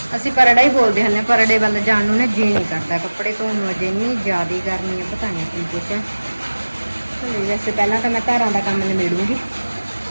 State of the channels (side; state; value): both; inverted; correlation -1.00